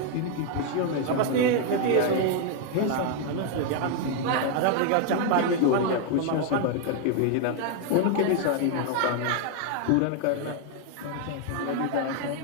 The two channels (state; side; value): different; both; correlation 0.00